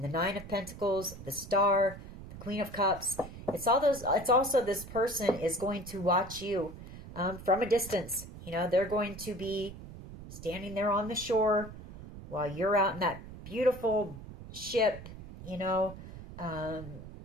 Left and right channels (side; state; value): right; noise; rumble, 14 dB below the sound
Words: the Nine of Pentacles, the Star, the Queen of Cups. It's also this person is going to watch you from a distance. You know, they're going to be standing there on the shore while you're out in that beautiful ship